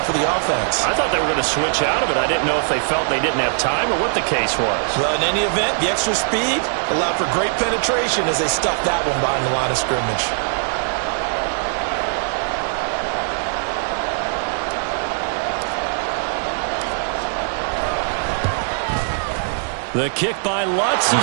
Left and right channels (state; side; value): silent; left; digital silence